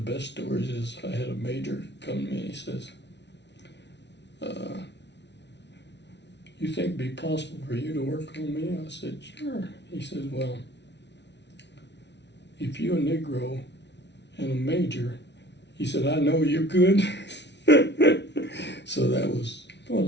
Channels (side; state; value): right; late; 0.50 ms